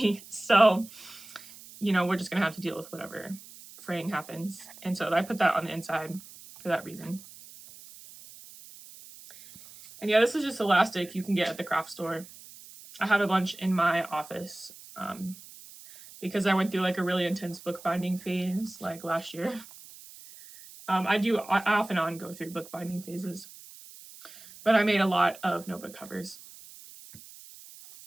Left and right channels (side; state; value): right; noise; hiss, 18 dB below the sound